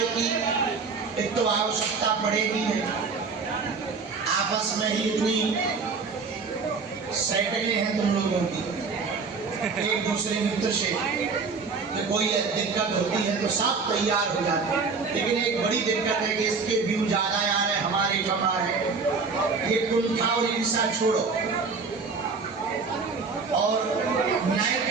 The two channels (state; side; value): quieter; left; 4.7 dB